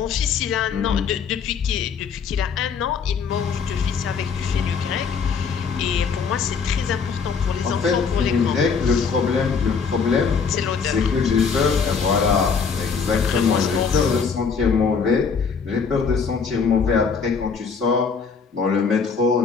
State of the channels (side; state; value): right; quieter; 5.7 dB